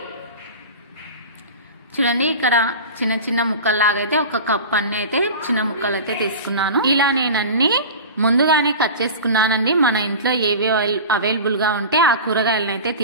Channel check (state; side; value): inverted; both; correlation -0.32